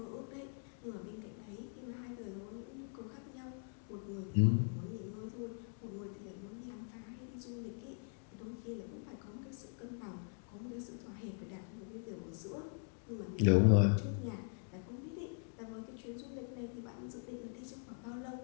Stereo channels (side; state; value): right; silent; 50 dB below the other